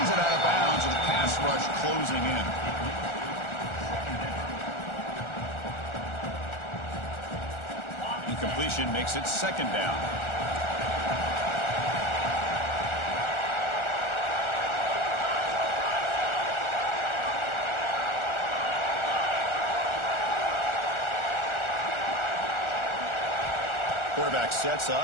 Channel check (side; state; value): right; late; 1.4 ms